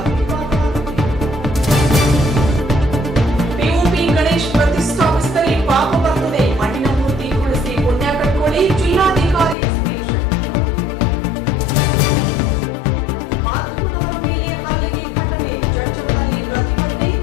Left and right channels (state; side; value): drops out; right; at 9.6 s